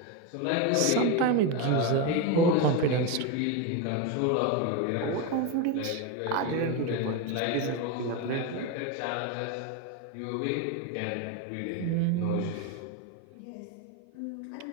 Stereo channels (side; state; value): both; different; correlation 0.04